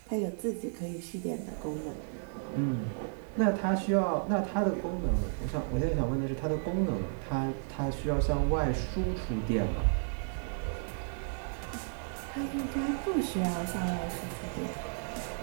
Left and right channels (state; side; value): silent; left; 56 dB below the other